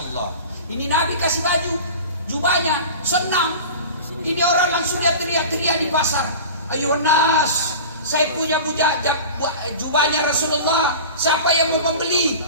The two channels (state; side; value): inverted; both; correlation -0.35